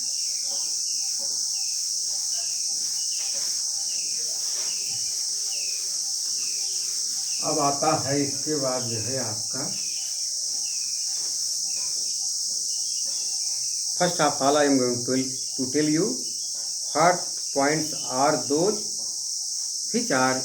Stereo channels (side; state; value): both; identical; correlation 1.00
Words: अब आता है इसके बाद जो है आपका first of all I am going to tell you what points are those which are